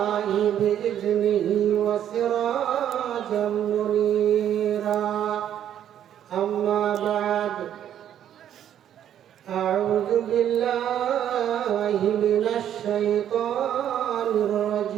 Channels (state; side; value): quieter; left; 10.3 dB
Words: بإذنه وسراجا منيرا أما بعد أعوذ بالله من الشيطان